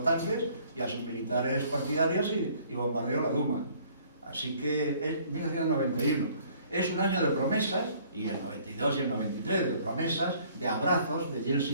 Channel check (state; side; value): inverted; both; correlation -0.58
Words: tanques y a sus militares partidarios y bombardeó la Duma. Así que es 1991. Es un año de promesas, y el 92 y el 93, de promesas, de abrazos de